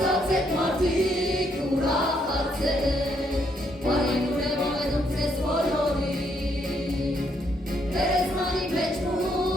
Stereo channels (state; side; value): normal; both; correlation 0.73